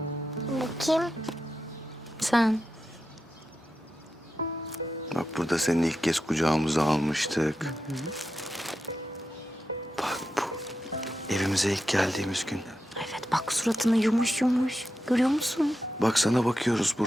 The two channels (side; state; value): both; normal; correlation 0.89